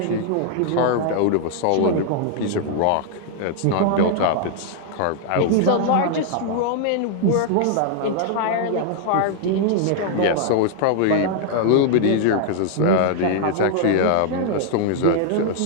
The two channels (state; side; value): different; both; correlation 0.00